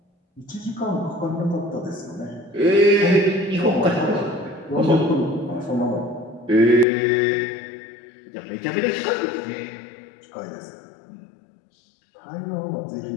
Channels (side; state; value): right; drops out; at 6.9 s